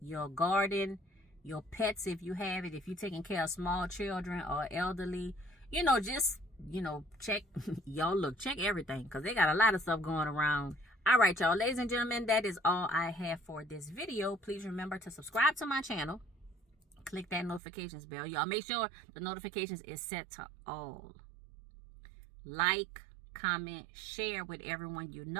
garden, your pets if you have it, if you're taking care of small children or elderly. You know, just, you know, check, y'all look, check everything, because they got a lot of stuff going around. All right, y'all, ladies and gentlemen, that is all I have for this video. Please remember to subscribe to my channel. Click that notifications bell. Y'all make sure the notifications is set to all. Like, comment, share with everyone you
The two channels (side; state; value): left; drops out; at 17.6 s